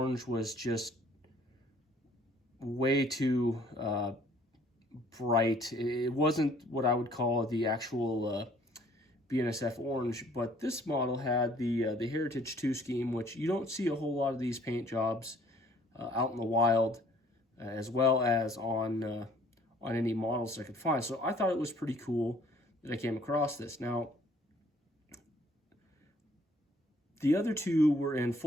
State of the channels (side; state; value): both; normal; correlation 0.59